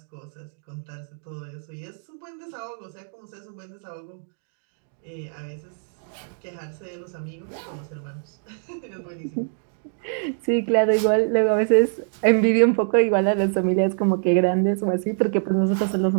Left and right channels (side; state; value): left; silent; digital silence